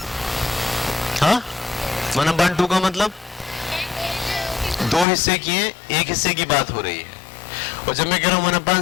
हाँ 1/2 का मतलब 2 हिस्से किए, एक हिस्से की बात हो रही है। और जब मैं कह रहा हूं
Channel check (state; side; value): drops out; right; at 5.1 s